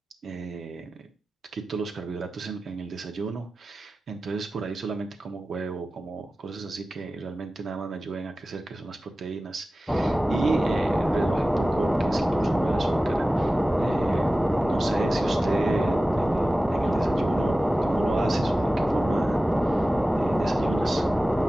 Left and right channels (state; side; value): normal; both; correlation 0.95